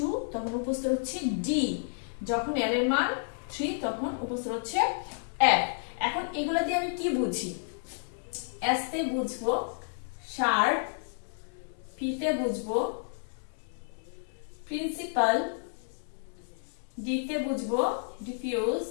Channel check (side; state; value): right; silent; digital silence